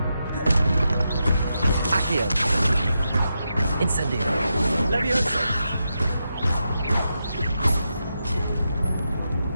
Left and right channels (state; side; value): inverted; both; correlation -0.86